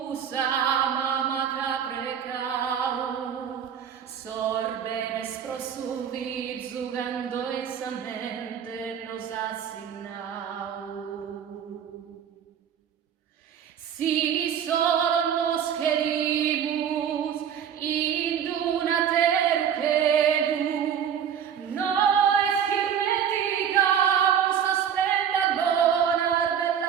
amamata precau, sorbenes prosumvit zugando esamente nos assignau. Si solo nos querimus in una teruquelu, nois hirmeticamus aspenda bonar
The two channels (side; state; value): left; quieter; 8.5 dB